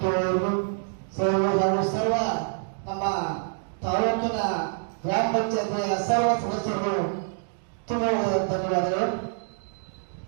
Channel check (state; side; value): silent; left; digital silence